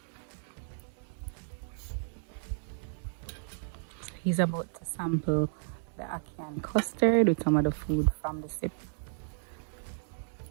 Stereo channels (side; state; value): left; silent; digital silence